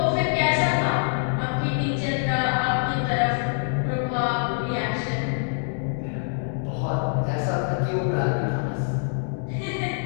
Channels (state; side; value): silent; right; digital silence